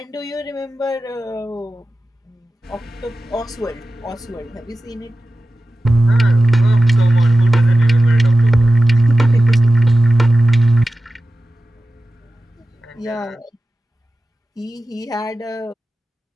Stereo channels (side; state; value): both; normal; correlation 0.94